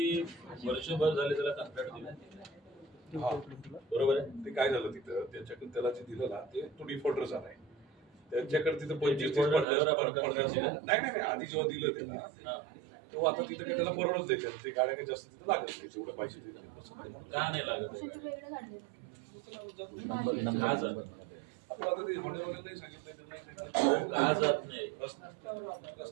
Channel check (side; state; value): left; drops out; at 9.7 s